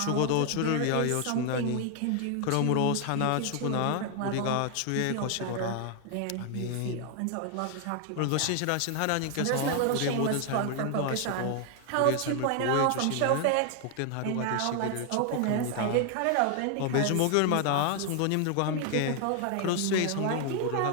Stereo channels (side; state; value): both; different; correlation 0.00